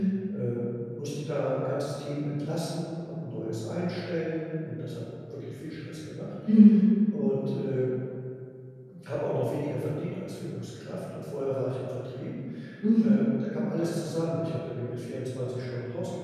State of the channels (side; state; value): both; identical; correlation 1.00